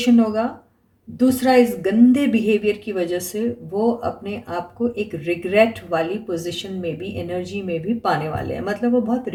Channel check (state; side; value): identical; both; correlation 1.00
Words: होगा, दूसरा इस गंदे बिहेवियर की वजह से वो अपने आप को एक रिग्रेट वाली पोजीशन में भी, एनर्जी में भी पाने वाले हैं। मतलब वो बहुत